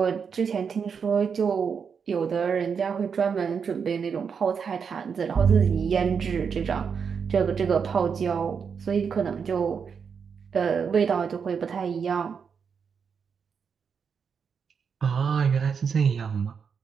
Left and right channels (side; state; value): left; quieter; 6.4 dB